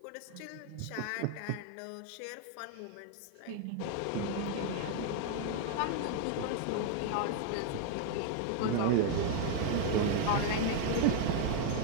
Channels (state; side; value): different; both; correlation 0.00